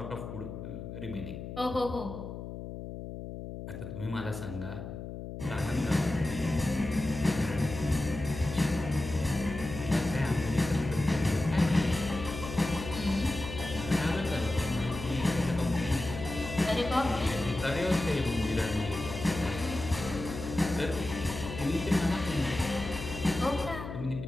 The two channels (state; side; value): noise; left; hum, 9 dB below the sound